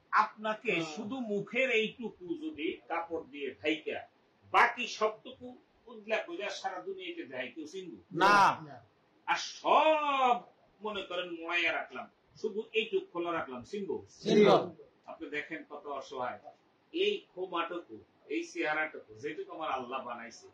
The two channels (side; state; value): both; identical; correlation 1.00